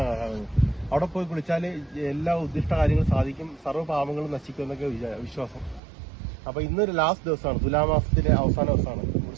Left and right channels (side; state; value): left; drops out; at 5.8 s